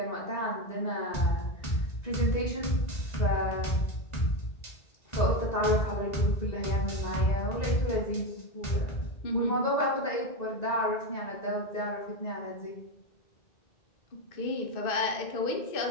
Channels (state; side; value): late; right; 1.9 ms